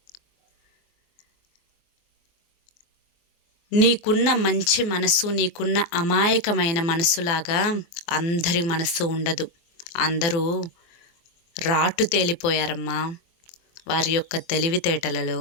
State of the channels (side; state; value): right; late; 24 ms